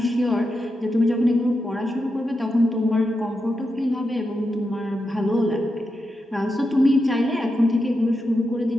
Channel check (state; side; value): normal; both; correlation 0.87